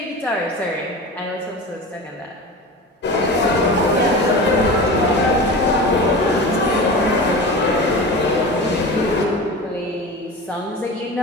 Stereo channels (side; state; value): both; normal; correlation 0.31